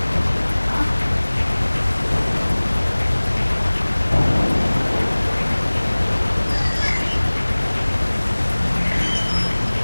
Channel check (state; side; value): inverted; both; correlation -1.00